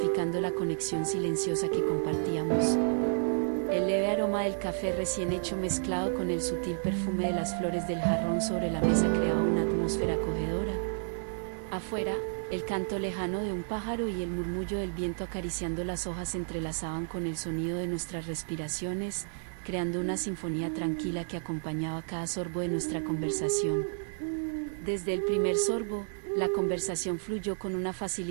la conexión silenciosa que compartíamos. El leve aroma del café recién hecho mezclado con el sutil perfume de las flores del jarrón sobre la mesa creaba una atmósfera acogedora. Afuera, el canto lejano de un pájaro y el murmullo del viento acariciando las hojas se entrelazaban con el sonido de nuestras respiraciones, creando una sinfonía tranquila que acompañaba cada sorbo de nuestra conversación. Desde el primer sorbo, la conversación fluyó con una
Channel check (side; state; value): left; silent; digital silence